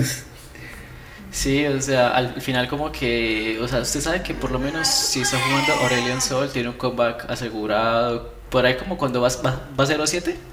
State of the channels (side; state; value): both; identical; correlation 1.00